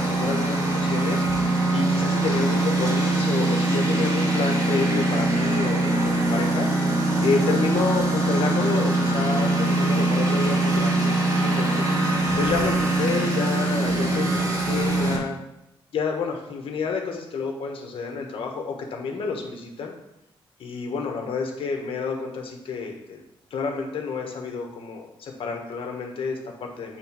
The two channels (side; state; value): both; normal; correlation 0.69